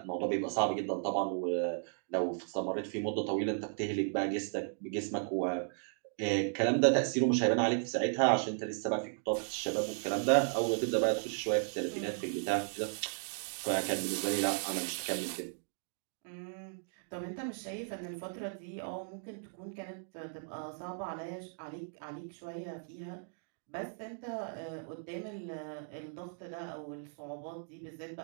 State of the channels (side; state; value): left; silent; digital silence